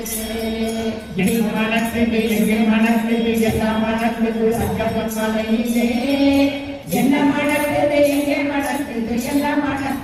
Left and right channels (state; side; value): identical; both; correlation 1.00